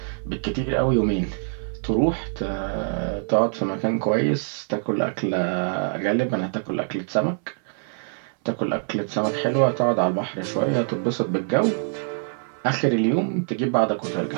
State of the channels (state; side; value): silent; left; 62 dB below the other